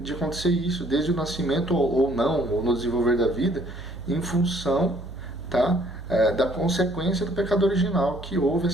acontecer isso desde o nascimento ou não, ou no desenvolver da vida, em função, tá, da consequência do pecado original, que houve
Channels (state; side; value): noise; right; hum, 13 dB below the sound